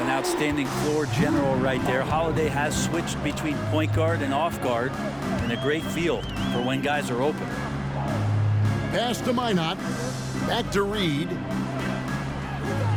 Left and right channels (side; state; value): both; identical; correlation 1.00